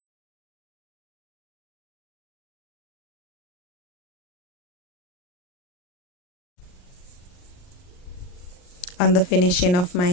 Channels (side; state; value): right; late; 39 ms